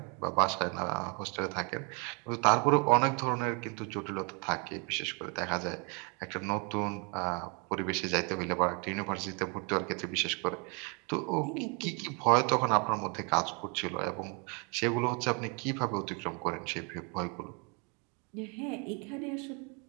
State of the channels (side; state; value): left; quieter; 33.9 dB